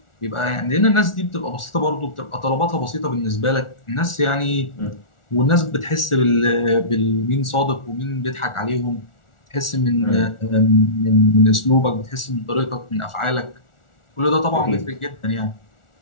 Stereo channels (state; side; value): late; right; 1.4 ms